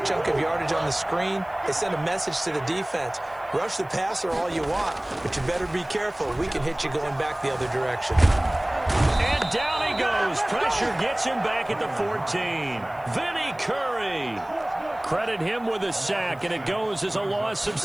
of yardage on the screen, they sent a message to the defense. Rush the passer all you want, but you better be careful. We can hit you going back the other direction. And down he goes. Pressure gets him back at the 14. Vinny Curry. Credit him with a sack, and it goes as a loss of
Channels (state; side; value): noise; left; hiss, 29 dB below the sound